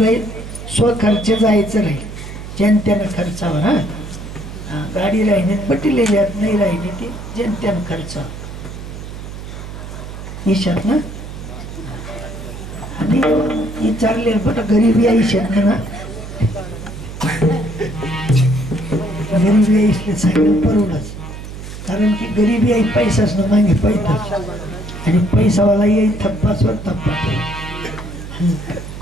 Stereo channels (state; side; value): noise; right; hum, 11 dB below the sound